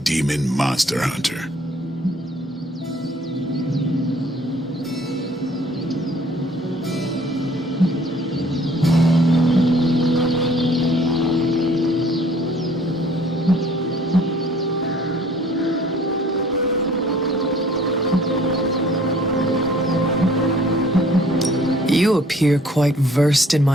monster hunter. You appear quite versed in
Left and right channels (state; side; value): normal; both; correlation 0.56